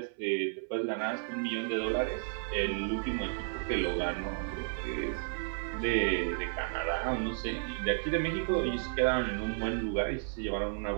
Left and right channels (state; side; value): silent; left; 56 dB below the other